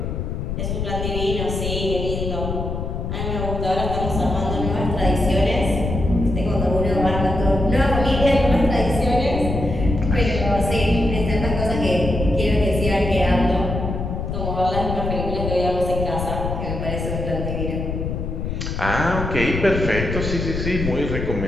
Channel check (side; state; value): left; noise; rumble, 3 dB below the sound